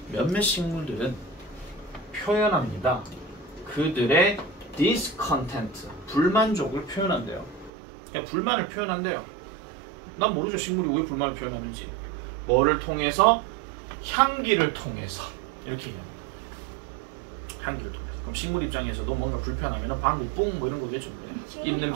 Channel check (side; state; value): left; drops out; at 7.7 s